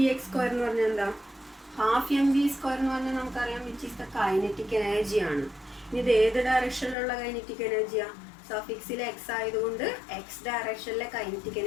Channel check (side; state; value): right; drops out; at 7.0 s